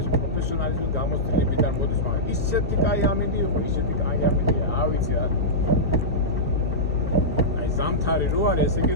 პროფესიონალიზმი გამოსtildeებიდან მოდის, მაგრამ ისეთი კაი ამინდი იყო, ისეთი კაი ამინდია, არ ვიცი რა. აი ზამთარი რო არის, ესე იგი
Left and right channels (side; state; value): both; normal; correlation -0.13